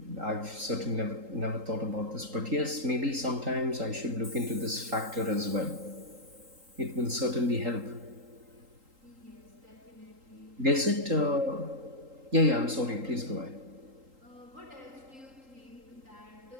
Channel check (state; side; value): late; left; 3.8 ms